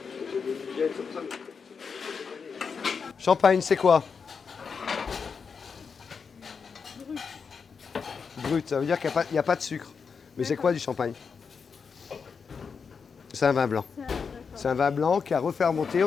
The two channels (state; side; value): quieter; right; 5.8 dB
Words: Champagne, c'est quoi? Brut, ça veut dire qu'il n'y a pas de sucre. Mais c'est quoi du champagne? C'est un vin blanc. C'est un vin blanc qui a refermenté,